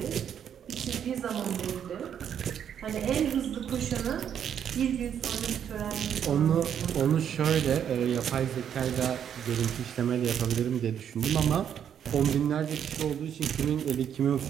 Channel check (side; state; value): left; quieter; 8.9 dB